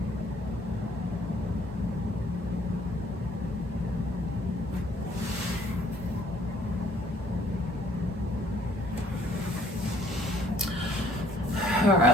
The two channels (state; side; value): normal; both; correlation 0.61